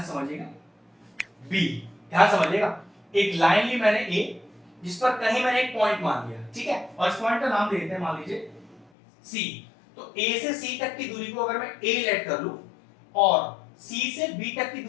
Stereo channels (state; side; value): drops out; right; at 8.8 s